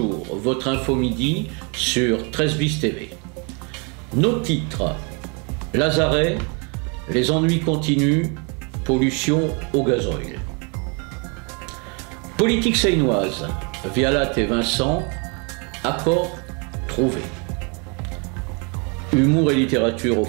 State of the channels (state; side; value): quieter; left; 34.3 dB